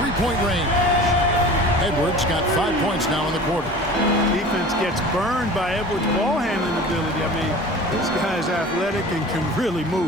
three-point range. Edwards got 5 points now in the quarter. Defense gets burned by Edwards' ball handling ability. I mean, this guy's athletic and can really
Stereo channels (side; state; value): both; normal; correlation 0.39